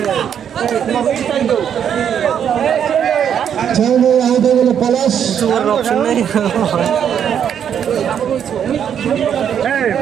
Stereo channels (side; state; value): left; quieter; 8.6 dB